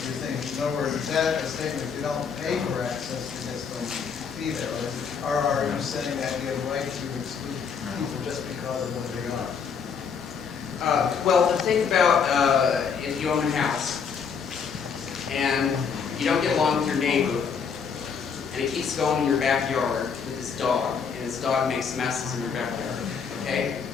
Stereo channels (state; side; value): quieter; right; 6.4 dB